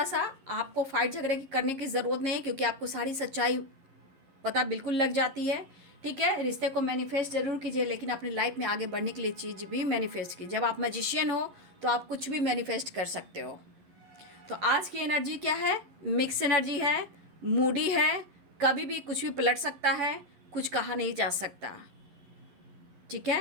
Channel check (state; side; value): late; left; 11 ms